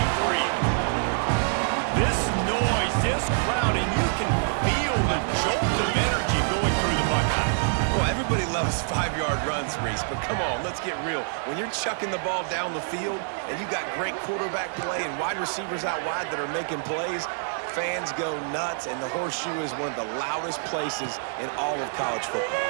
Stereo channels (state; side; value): silent; left; digital silence